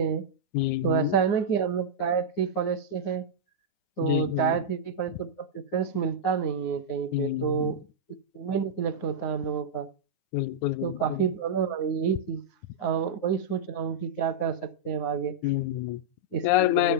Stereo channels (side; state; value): right; late; 9.6 ms